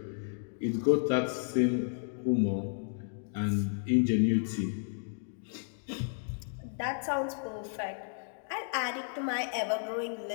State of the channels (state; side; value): silent; right; digital silence